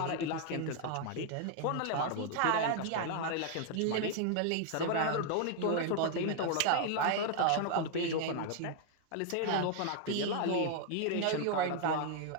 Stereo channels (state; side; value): different; both; correlation 0.00